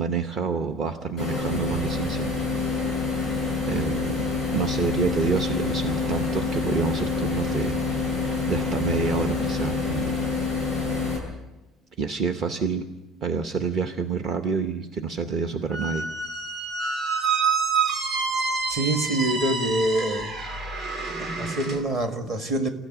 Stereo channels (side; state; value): both; normal; correlation 0.42